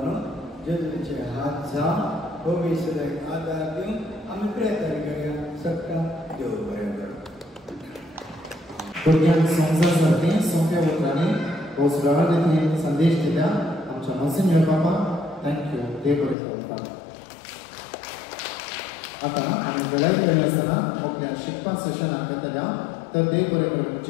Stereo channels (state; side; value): drops out; right; at 16.4 s